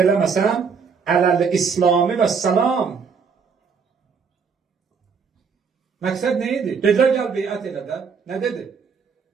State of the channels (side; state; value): left; quieter; 5.8 dB